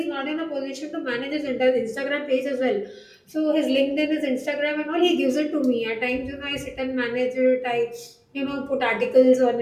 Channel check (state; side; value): identical; both; correlation 1.00